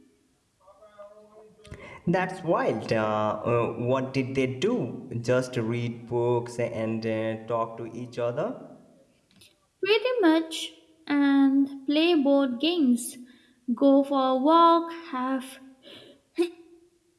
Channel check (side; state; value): both; identical; correlation 1.00